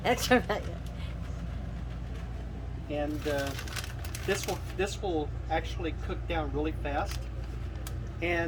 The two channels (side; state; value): both; identical; correlation 1.00